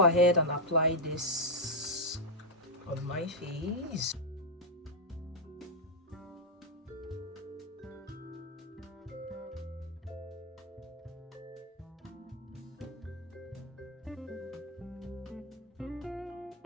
ahead and apply this on my face.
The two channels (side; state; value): both; normal; correlation -0.02